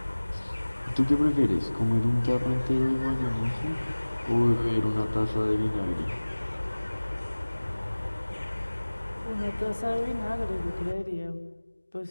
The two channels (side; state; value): both; inverted; correlation -1.00